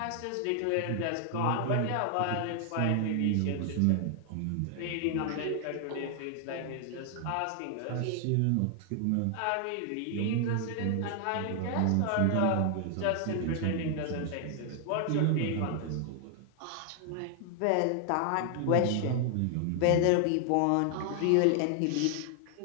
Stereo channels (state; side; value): different; both; correlation 0.00